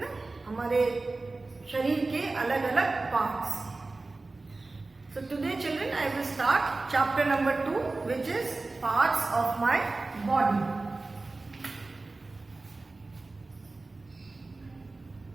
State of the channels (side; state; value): left; quieter; 3.4 dB